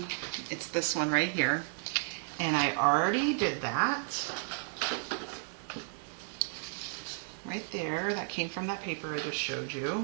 It's this one right here. And I already did that. Right there, that came from that paper I just showed you.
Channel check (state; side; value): silent; left; 56 dB below the other